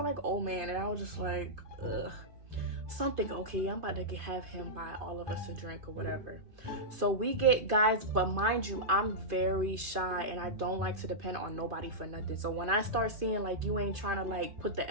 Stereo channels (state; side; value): late; left; 2.5 ms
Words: like old man. And I was just like, ugh. Something, okay, I'm about to have him buy all of us a drink or whatever. So we get, guys, but mind you, I'm very shy and I don't like to depend on nobody for nothing. So when I start seeing like you ain't trying to like put the